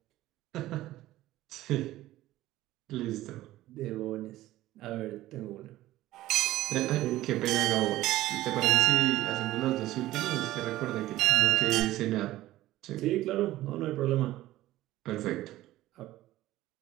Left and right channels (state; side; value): quieter; left; 15.7 dB